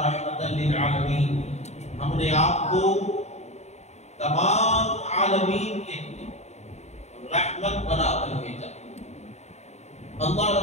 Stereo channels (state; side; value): late; right; 0.32 ms